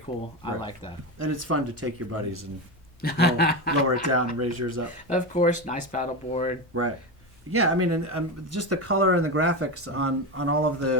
Right. I like that. And it's fun to take your buddies and lower it down and raise yours up. Of course, nice paddle board. Right. Yeah, I mean, and just the color and the graphics on all of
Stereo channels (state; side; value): normal; both; correlation 0.17